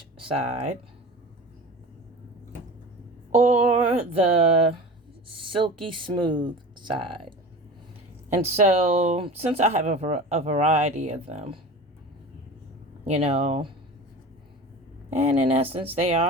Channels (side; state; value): both; normal; correlation 0.35